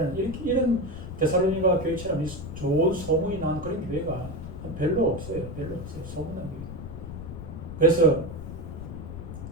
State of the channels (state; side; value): noise; left; rumble, 9 dB below the sound